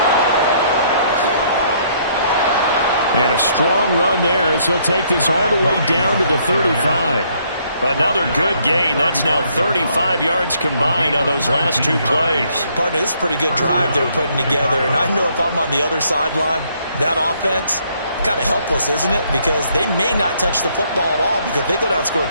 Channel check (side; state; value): both; inverted; correlation -0.67